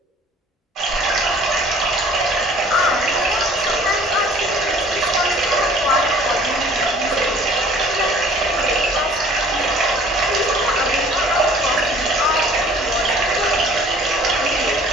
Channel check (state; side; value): normal; both; correlation 0.52